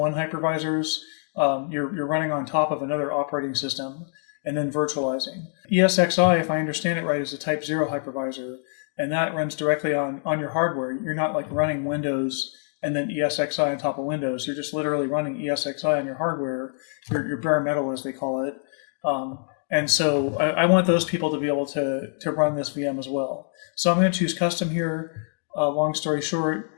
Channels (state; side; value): silent; right; 62 dB below the other